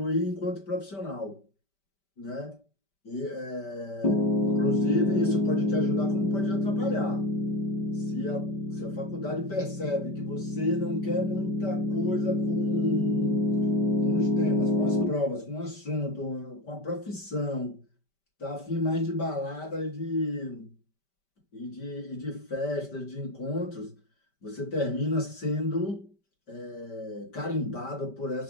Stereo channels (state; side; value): late; right; 5.1 ms